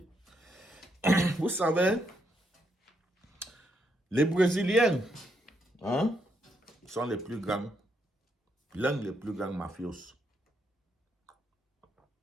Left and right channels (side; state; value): both; normal; correlation 0.77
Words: Vous savez, les Brésiliens, hein, sont les plus grands, l'un des plus grands mafios